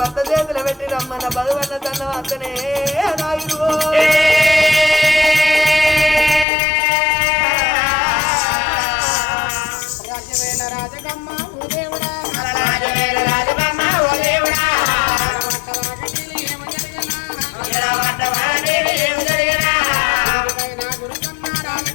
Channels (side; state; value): right; drops out; at 6.5 s